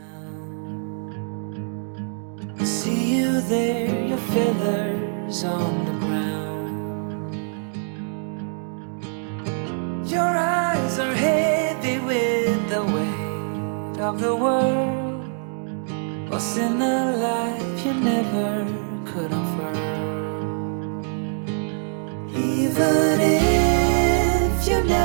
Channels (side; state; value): left; silent; digital silence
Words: I see you there, your feathers on the ground. Your eyes are heavy with the weight of the world. What's in a life you never could afford? Even if you